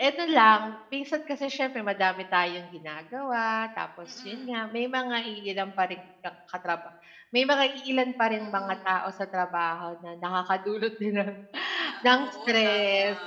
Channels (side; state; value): both; identical; correlation 1.00